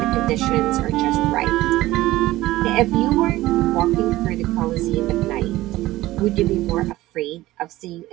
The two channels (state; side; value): quieter; left; 17.0 dB